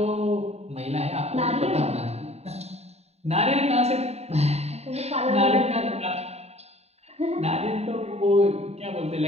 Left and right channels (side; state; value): left; late; 0.31 ms